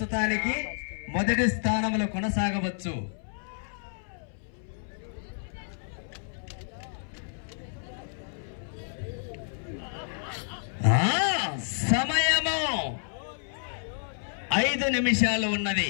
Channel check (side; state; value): right; silent; 58 dB below the other